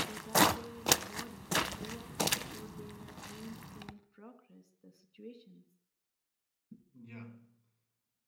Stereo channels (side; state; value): both; identical; correlation 1.00